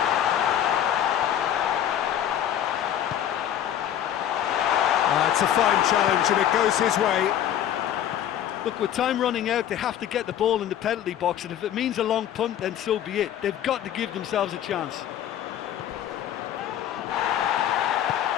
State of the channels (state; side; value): quieter; right; 10.7 dB